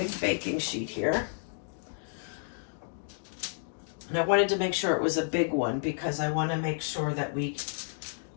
baking sheet here. And I wanted to make sure it was a big one because I want to make sure that we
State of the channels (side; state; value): right; silent; digital silence